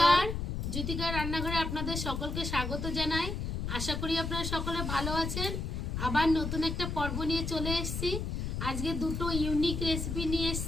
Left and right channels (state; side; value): noise; left; rumble, 3 dB below the sound